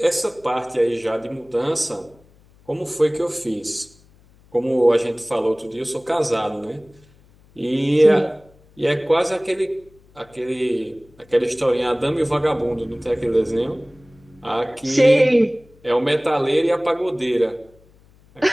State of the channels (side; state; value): left; noise; hum, 29 dB below the sound